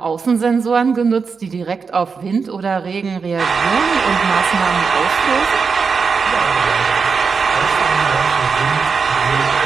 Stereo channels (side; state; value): left; quieter; 5.3 dB